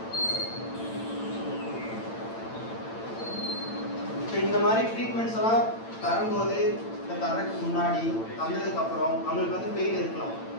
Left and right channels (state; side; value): late; right; 8.9 ms